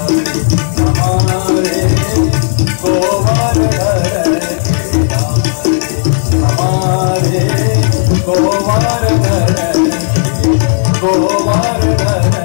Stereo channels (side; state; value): right; silent; digital silence